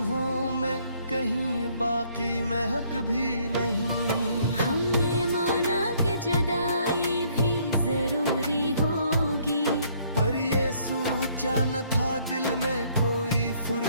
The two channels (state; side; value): inverted; both; correlation -0.65